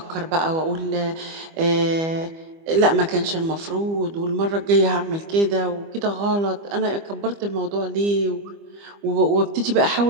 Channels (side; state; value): left; late; 25 ms